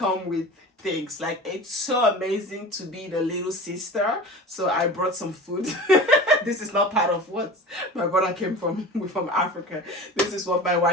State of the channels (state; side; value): normal; both; correlation 0.36